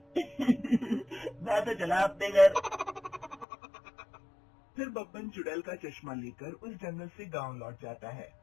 मैं तो चला अपने घर। फिर बब्बन चुड़ैल का चश्मा लेकर उस जंगल से गांव लौट जाता है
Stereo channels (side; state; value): right; drops out; at 3.5 s